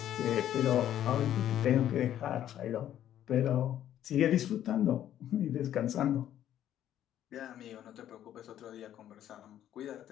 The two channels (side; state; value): right; quieter; 11.3 dB